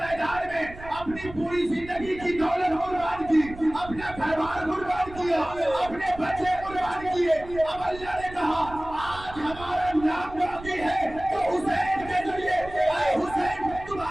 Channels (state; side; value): noise; right; rumble, 15 dB below the sound